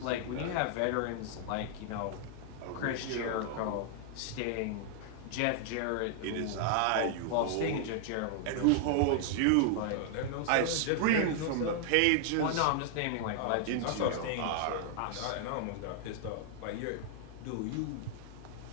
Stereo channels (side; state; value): both; different; correlation 0.00